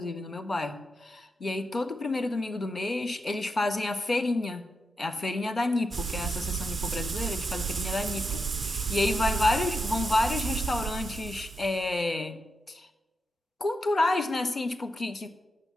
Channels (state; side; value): normal; both; correlation 0.86